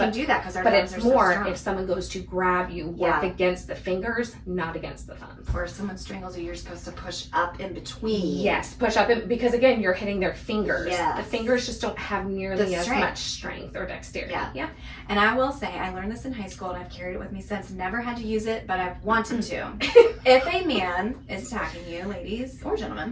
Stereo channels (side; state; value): both; identical; correlation 1.00